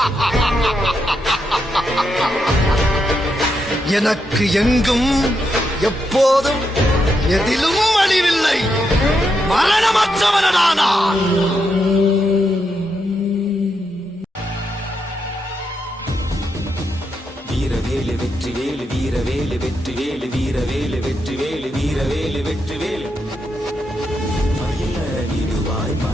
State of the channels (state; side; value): normal; both; correlation 0.82